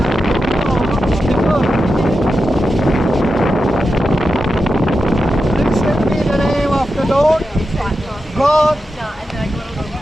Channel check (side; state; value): both; normal; correlation 0.90